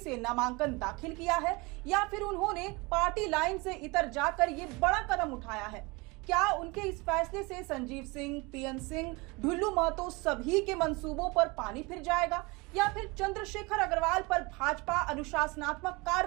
नामांकन दाखिल किया है या फिर उन्होंने पार्टी लाइन से इतर जाकर ये बड़ा कदम उठाया है। क्या उनके इस फैसले से संजीव सिंह, पीएन सिंह, ढुल्लू महतो सभी के मंसूबों पर पानी फिर जाएगा या फिर चंद्रशेखर अग्रवाल पर भाजपा अनुशासनात्मक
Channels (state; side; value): quieter; left; 25.7 dB